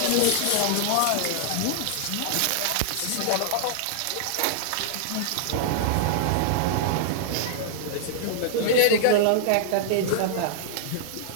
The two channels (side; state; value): both; different; correlation -0.01